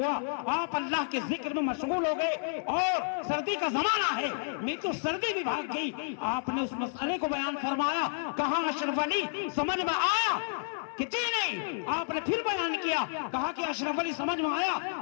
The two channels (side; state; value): right; silent; 57 dB below the other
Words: آپ اللہ کے ذکر میں مشغول ہو گئے اور سردی کا زمانہ ہے، میں تو سردی بھی بھاگ گئی۔ آپ نے اس مسئلے کو بیان فرمایا، کہا اشرف علی سمجھ میں آیا کہ جی نہیں؟ آپ نے پھر بیان کیا، کہا کہ اشرف علی سمجھ میں آیا